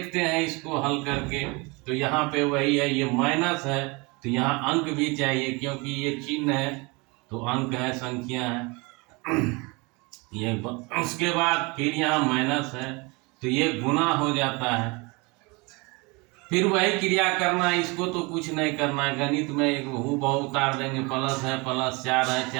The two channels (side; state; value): left; quieter; 27.3 dB